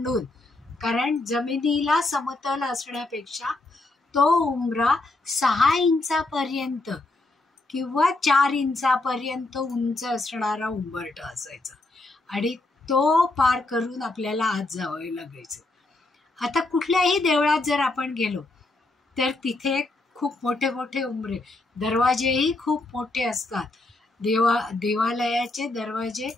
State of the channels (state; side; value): quieter; right; 3.0 dB